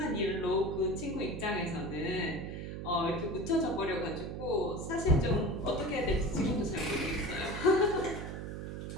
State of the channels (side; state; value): right; noise; hum, 6 dB below the sound